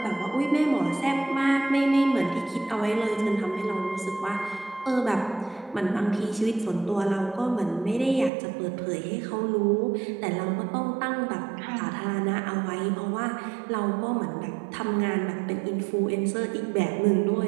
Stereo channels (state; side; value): drops out; left; at 8.3 s